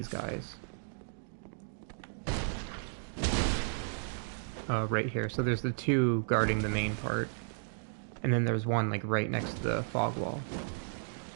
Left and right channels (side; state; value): left; silent; digital silence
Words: guys. Right here. So there's the 2 guarding the main part. And then there's one, like, right next to the fog wall.